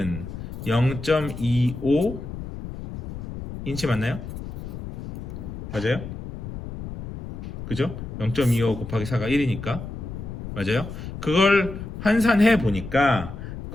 0.25인치 맞나요? 맞아요? 그죠? 0.25 곱하기 4가 1이니까 맞아요? 그걸 환산해 보니까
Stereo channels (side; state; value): left; noise; rumble, 9 dB below the sound